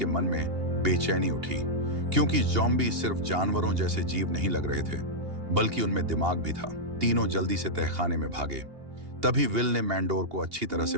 मन में बेचैनी उठी, क्योंकि ज़ॉम्बी सिर्फ जानवरों जैसे जीव नहीं लग रहे थे, बल्कि उनमें दिमाग भी था। तीनों जल्दी से तहखाने में भागे। तभी विल ने मैंडोर को अच्छी तरह से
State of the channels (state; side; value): late; left; 2.8 ms